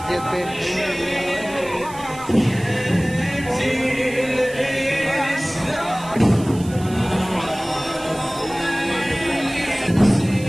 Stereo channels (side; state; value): right; noise; hiss, 18 dB below the sound